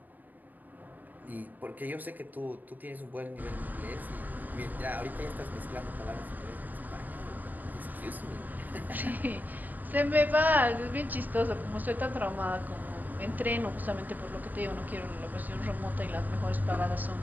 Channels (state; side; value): late; left; 0.086 ms